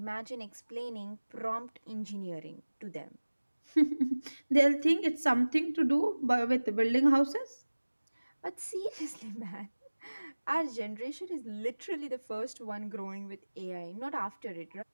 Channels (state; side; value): inverted; both; correlation -1.00